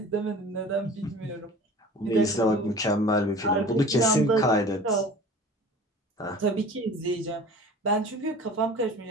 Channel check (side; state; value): both; normal; correlation 0.41